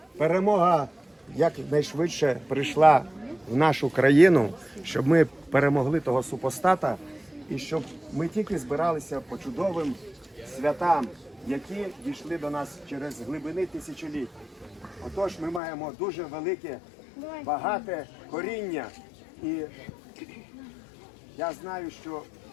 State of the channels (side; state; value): right; drops out; at 15.6 s